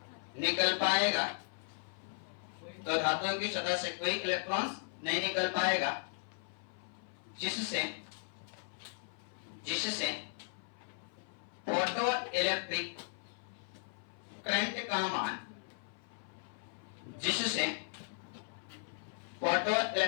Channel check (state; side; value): silent; right; 53 dB below the other